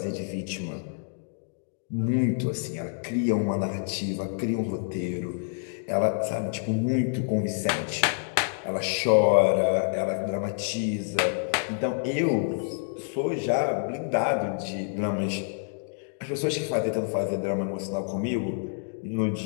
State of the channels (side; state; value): right; silent; digital silence